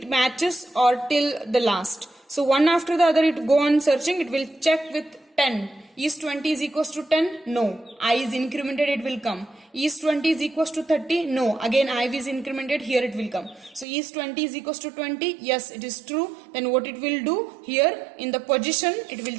matches or till the last. So one after the other it go on searching. It will check with 10. Is 20 is equals to 10? No. I is incremented, it will come. Is 20 is equals to 30? No. Again I is incremented, here it will come. So is 20 is equals to 20? Yes, it is true. Then what it will do? Here in the position, it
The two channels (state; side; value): drops out; left; at 13.9 s